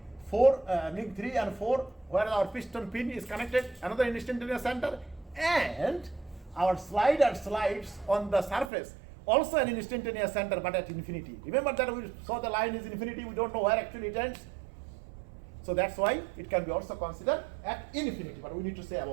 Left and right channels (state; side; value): drops out; left; at 8.7 s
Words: 3 and 4, where our piston pin is connected, another instantaneous center, and our slider slides on the surface, also an instantaneous center, but at infinity. Remember that we saw the line is infinity, we don't know where actually it ends. So that's why it can be also considered at infinity, but we need to say